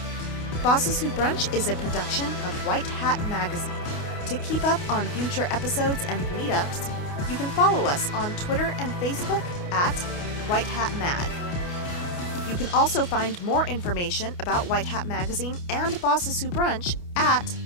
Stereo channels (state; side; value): late; right; 28 ms